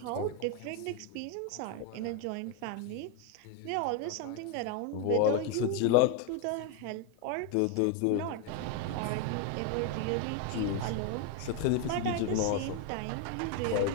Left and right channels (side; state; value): both; different; correlation 0.01